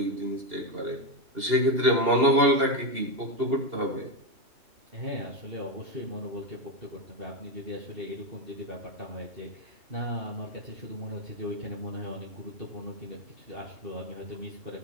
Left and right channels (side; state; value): left; late; 2.8 ms